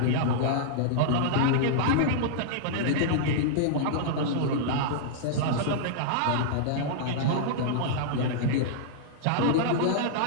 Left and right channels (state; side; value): different; both; correlation -0.02